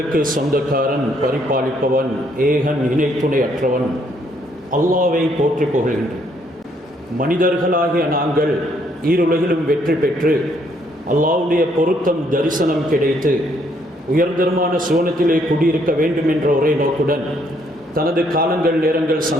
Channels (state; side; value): normal; both; correlation 0.69